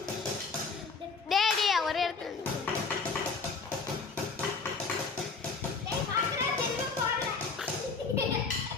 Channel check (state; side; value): quieter; right; 4.7 dB